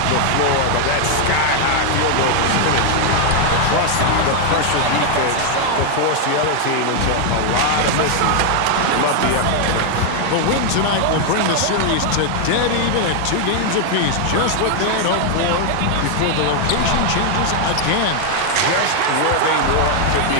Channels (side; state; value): both; different; correlation 0.00